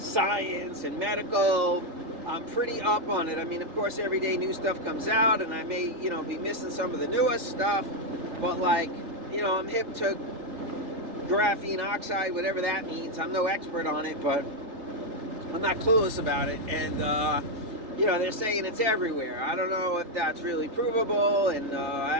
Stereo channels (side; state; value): left; late; 3.4 ms